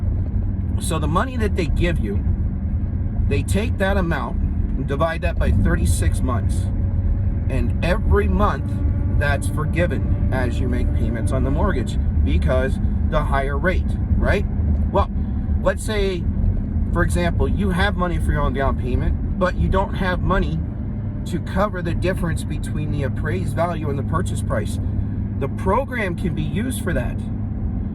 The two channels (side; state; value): both; identical; correlation 1.00